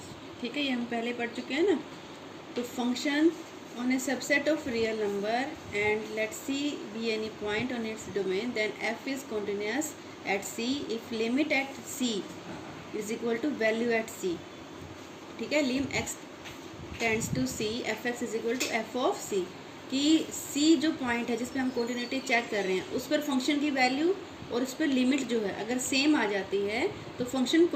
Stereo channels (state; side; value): identical; both; correlation 1.00